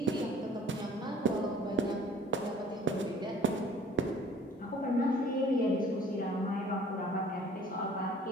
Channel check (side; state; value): both; normal; correlation 0.51